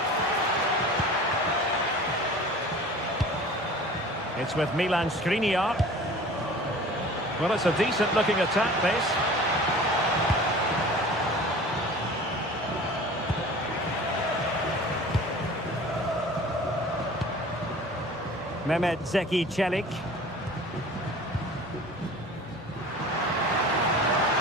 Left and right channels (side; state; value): both; normal; correlation 0.42